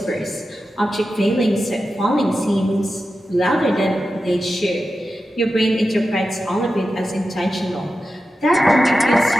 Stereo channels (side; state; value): both; normal; correlation 0.92